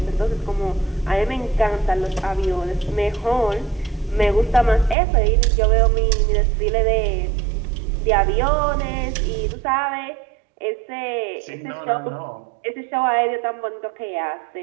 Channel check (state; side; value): drops out; left; at 5.0 s